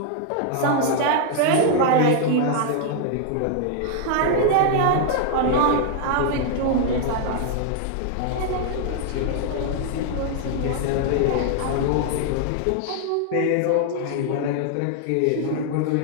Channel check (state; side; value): different; both; correlation 0.00